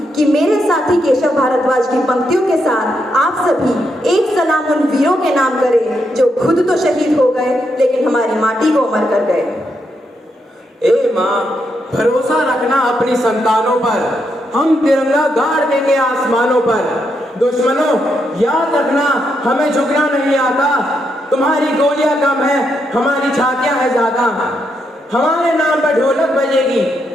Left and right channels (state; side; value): normal; both; correlation 0.80